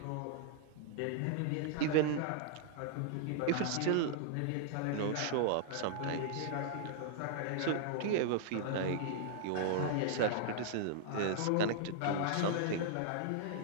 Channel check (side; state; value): both; different; correlation -0.01